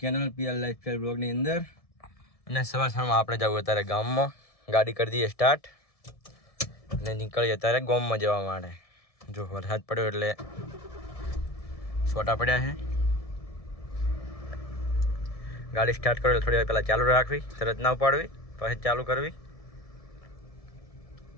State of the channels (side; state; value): right; late; 1.7 ms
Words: channel PR lifestyle બ્લોગની અંદર. અને સવારમાં આપણે જવું અત્યારે ગામમાં, ગાડી કરી દઈએ સ્ટાર્ટ અને નીકળીએ અત્યારે ગામમાં જવા માટે. જો વરસાદ પડ્યો એટલે છોટા પડ્યા છે. ગાડી સ્ટાર્ટ કરો થોડી વાર પહેલાં ચાલુ રાખવી, તરત ના ઉપાડવી, પછી ચાલુ કરવી.